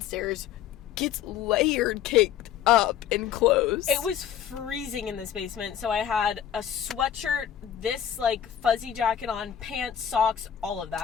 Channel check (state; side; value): quieter; right; 9.6 dB